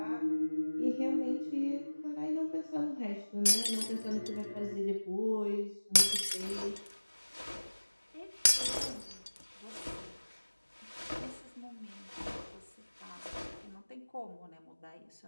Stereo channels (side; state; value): both; inverted; correlation -1.00